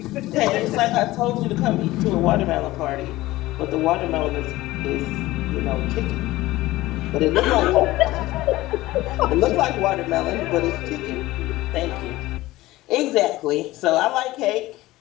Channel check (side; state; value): right; quieter; 17.8 dB